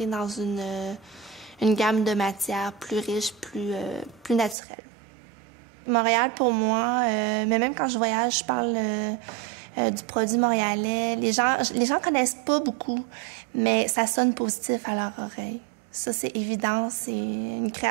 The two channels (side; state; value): left; drops out; at 4.5 s